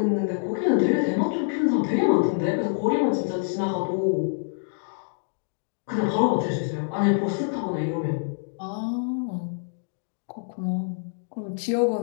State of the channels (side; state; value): right; silent; digital silence